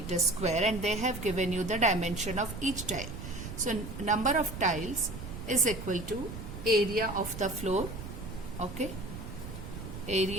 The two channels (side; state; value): right; noise; rumble, 9 dB below the sound